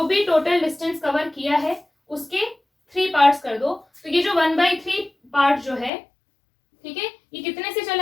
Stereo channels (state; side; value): drops out; right; at 5.9 s